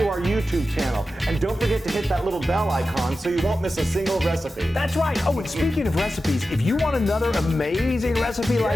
our YouTube channel. And don't forget to hit that little bell icon so you won't miss a single recipe. That's right. Oh, and speaking of recipes, if you want another amazing recipe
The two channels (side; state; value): both; normal; correlation 0.93